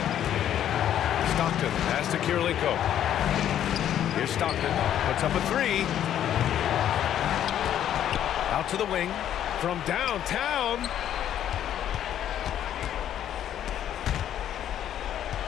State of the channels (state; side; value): quieter; right; 10.7 dB